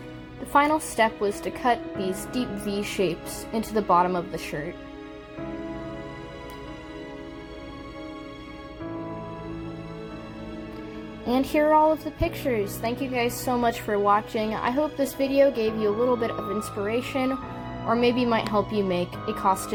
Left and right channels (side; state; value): both; identical; correlation 1.00